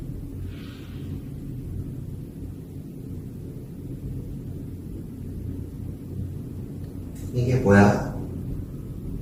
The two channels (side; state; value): both; identical; correlation 1.00